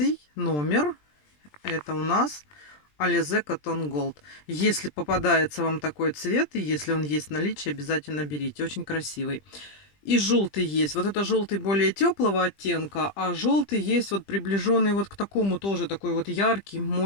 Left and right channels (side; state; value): right; late; 20 ms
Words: номер. Это у нас Alize Cotton Gold. Если попадается вам такой цвет, и если он есть в наличии, обязательно берите. Очень красивый. И желтый есть. Вот это желтый более теплого оттенка, а желтый есть вот приближенный вот к такому тоже такой вот яркий,